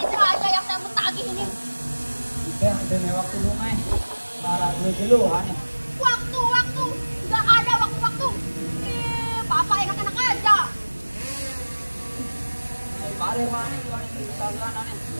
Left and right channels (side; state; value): both; inverted; correlation -1.00